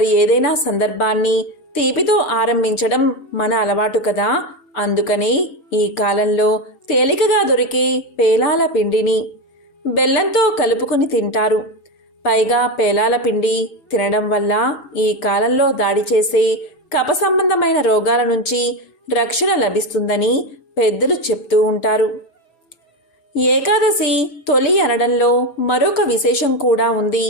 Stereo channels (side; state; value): right; late; 6.6 ms